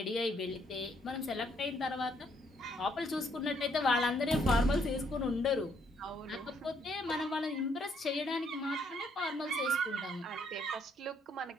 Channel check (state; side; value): normal; both; correlation 0.70